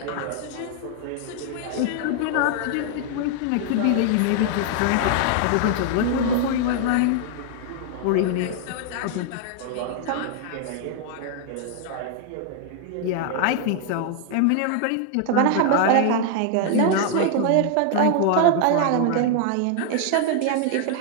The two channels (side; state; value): both; different; correlation 0.00